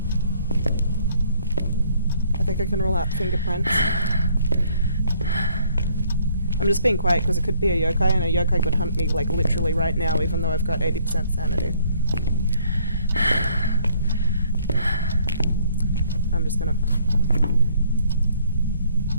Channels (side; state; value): both; inverted; correlation -0.63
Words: I think I can rule out fingerprints. I'm just being quiet because it could be a yokai, and a yokai could hunt me like literally right now even though I've got 80% sanity. I'm just gonna...